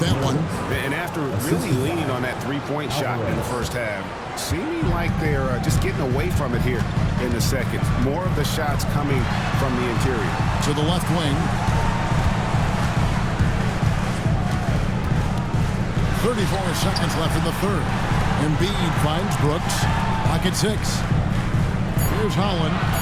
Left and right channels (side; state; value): both; identical; correlation 1.00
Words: one. And after really leaning on that three-point shot in the first half, seeming like they're just getting away from it here in the second. More of the shots coming from the interior. To the left wing. 34 seconds left in the third. Embiid finds Brooks. Pocket 6. Here's Holland,